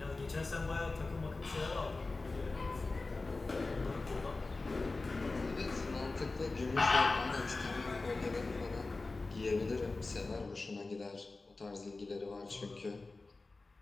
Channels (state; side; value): quieter; right; 3.5 dB